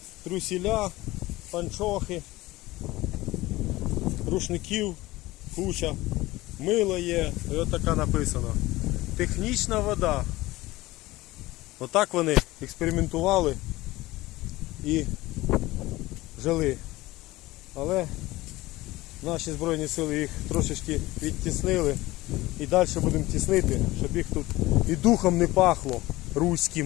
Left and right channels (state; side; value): quieter; right; 18.7 dB